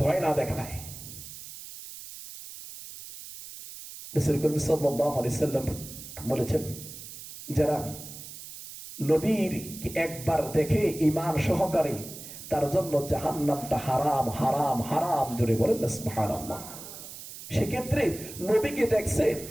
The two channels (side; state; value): right; noise; hiss, 13 dB below the sound